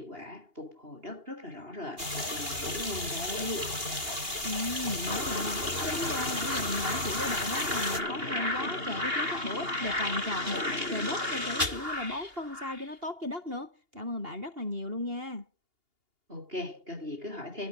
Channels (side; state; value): left; late; 2.8 ms